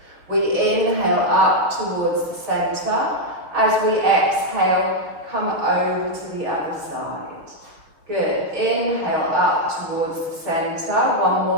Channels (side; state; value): left; late; 6.5 ms